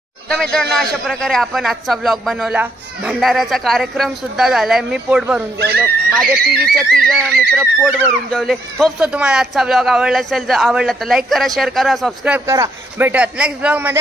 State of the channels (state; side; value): normal; both; correlation 0.74